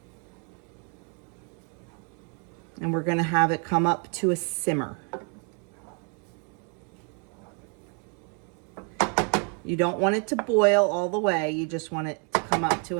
And we're going to have it come up to a simmer. You don't want it to boil all the way. You just want it to come up to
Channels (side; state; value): left; quieter; 38.3 dB